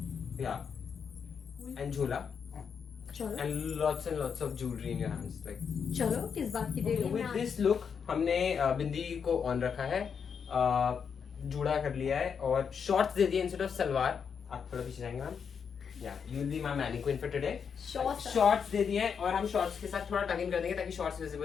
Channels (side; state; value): right; quieter; 6.7 dB